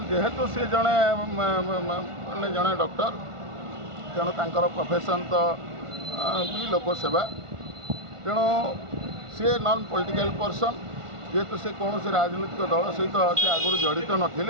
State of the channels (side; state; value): left; late; 1.5 ms